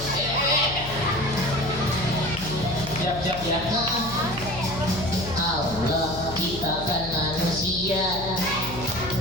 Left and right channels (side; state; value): left; noise; hum, 11 dB below the sound